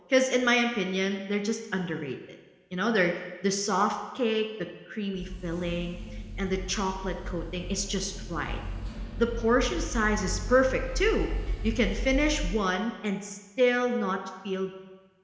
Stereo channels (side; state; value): both; identical; correlation 1.00